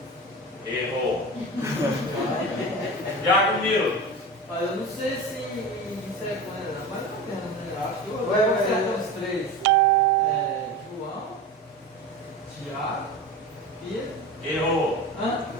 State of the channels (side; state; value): both; normal; correlation 0.29